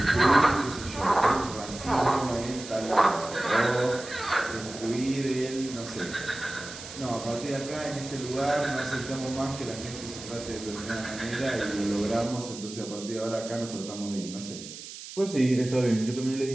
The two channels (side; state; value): right; noise; hiss, 12 dB below the sound